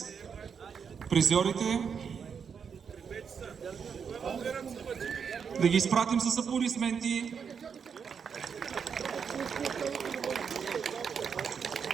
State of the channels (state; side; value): quieter; left; 6.6 dB